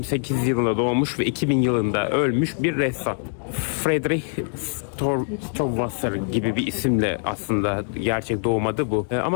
yılında doğmuş ve 2000 yılında ölmüş bir ressam. Friedrich Stowwasser gibi bir isimle aslında gerçek doğmadı bu.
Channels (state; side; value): silent; right; 55 dB below the other